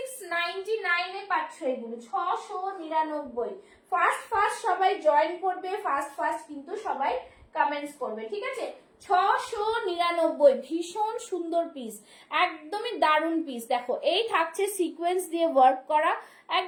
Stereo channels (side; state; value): both; identical; correlation 1.00